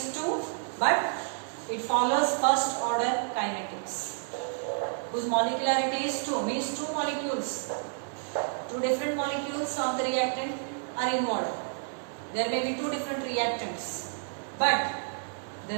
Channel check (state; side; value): silent; left; 58 dB below the other